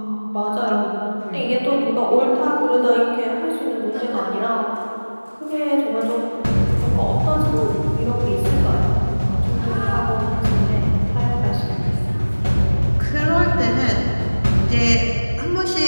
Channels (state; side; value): inverted; both; correlation -1.00